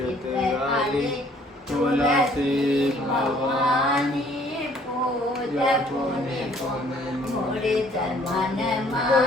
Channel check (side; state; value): both; normal; correlation 0.59